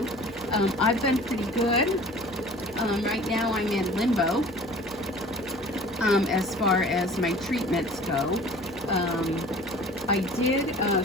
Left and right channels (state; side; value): normal; both; correlation 0.45